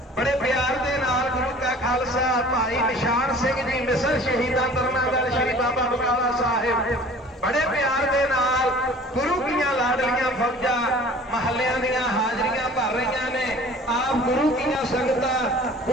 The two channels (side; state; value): both; normal; correlation 0.47